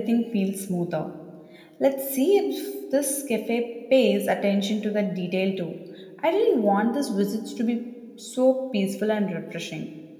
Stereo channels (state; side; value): identical; both; correlation 1.00